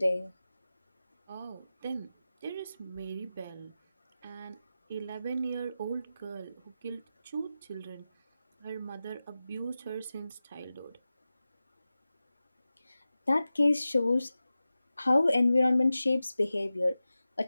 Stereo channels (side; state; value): both; inverted; correlation -0.95